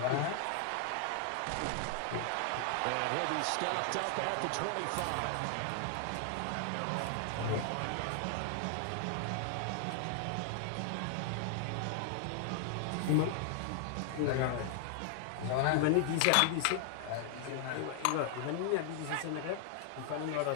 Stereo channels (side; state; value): both; different; correlation 0.00